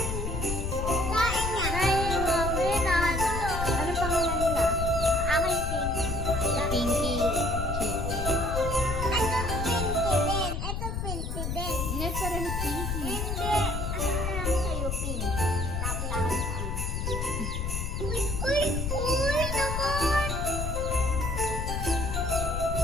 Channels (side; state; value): left; noise; rumble, 2 dB below the sound